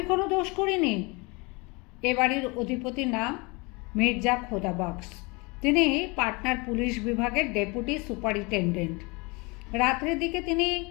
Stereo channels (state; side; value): quieter; right; 27.8 dB